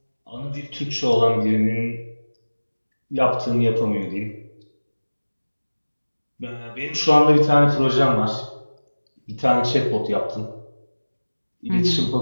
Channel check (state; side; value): inverted; both; correlation -1.00